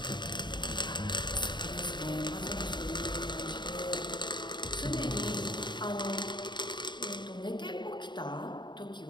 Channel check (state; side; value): late; right; 0.22 ms